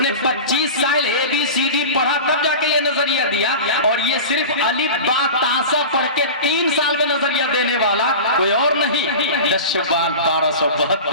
25 سال ABCD پڑھا، تب جا کے یہ نظریہ دیا۔ اور یہ صرف الف با تا سا پڑھ کے 3 سال میں نظریہ دینے والا کوئی اور نہیں۔ 10 شعبان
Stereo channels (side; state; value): both; inverted; correlation -0.31